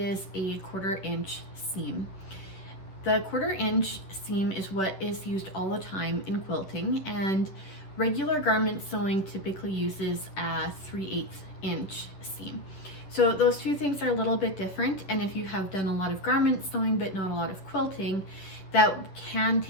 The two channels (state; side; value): late; right; 11 ms